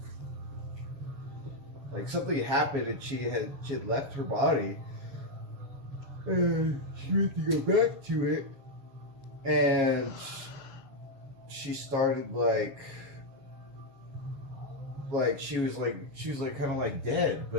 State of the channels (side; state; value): left; late; 7.3 ms